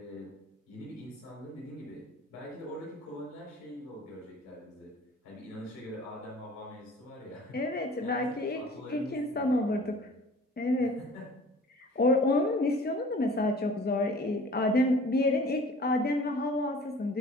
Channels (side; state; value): both; normal; correlation 0.48